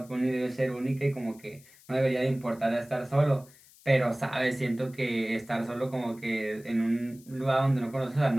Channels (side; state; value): left; noise; hiss, 25 dB below the sound